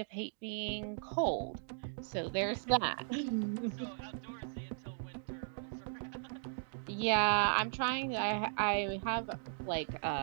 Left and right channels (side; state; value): left; silent; digital silence